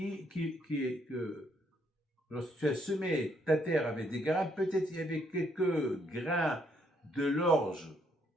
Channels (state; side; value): normal; both; correlation 0.71